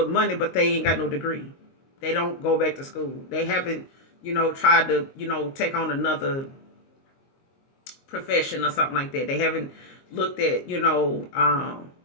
money, but they ain't got no degree. They don't go back to school. They haven't, tried to, take on another profession or something like that. They haven't looked at,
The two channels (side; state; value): right; late; 22 ms